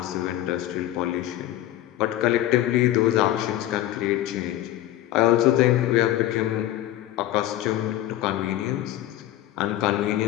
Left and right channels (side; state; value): right; quieter; 13.9 dB